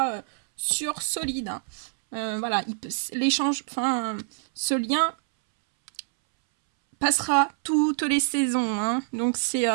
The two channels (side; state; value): left; silent; 61 dB below the other